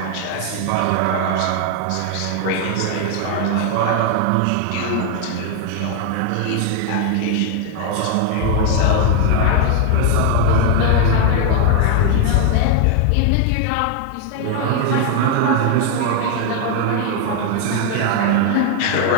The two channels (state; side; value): different; both; correlation 0.01